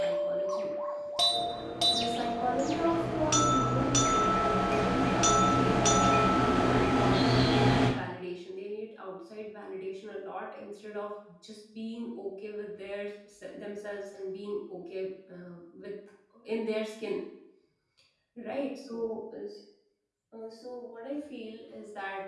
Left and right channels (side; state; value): both; identical; correlation 1.00